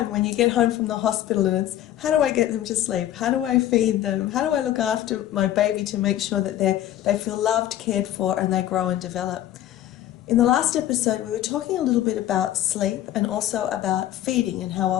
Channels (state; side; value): quieter; right; 12.8 dB